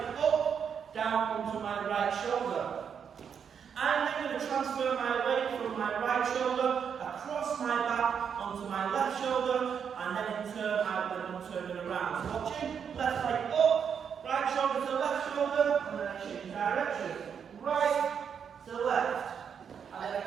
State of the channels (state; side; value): quieter; left; 7.3 dB